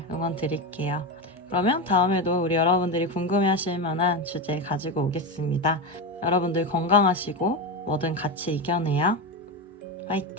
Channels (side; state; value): both; normal; correlation 0.16